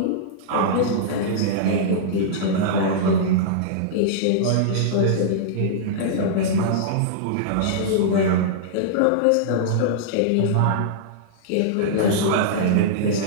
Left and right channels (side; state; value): both; different; correlation -0.02